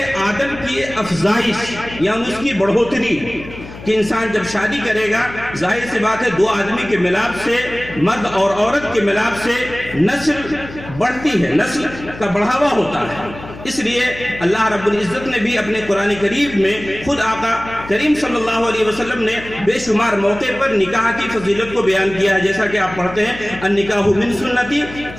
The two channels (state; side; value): noise; left; hum, 15 dB below the sound